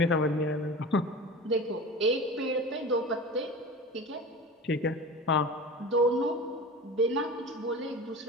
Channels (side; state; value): both; normal; correlation 0.33